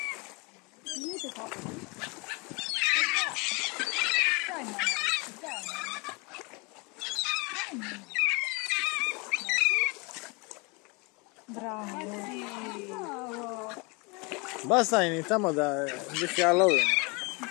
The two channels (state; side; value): quieter; right; 29.1 dB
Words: Niente troppo. Dai, mamma. Dai, mamma. Bravo. Bravo. Basta, iniciamo da Halloween.